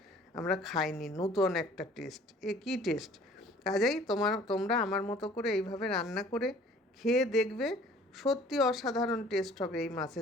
আমরা খাইনি, নূতন একটা টেস্ট, এ কী টেস্ট। কাজেই তোমরা আমার মতো করে এইভাবে রান্না করে খেয়ে দেখবে, সত্যি অসাধারণ টেস্ট হবে এই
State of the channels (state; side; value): normal; both; correlation 0.52